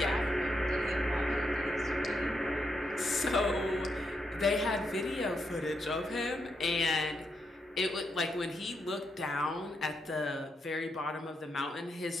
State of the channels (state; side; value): normal; both; correlation 0.81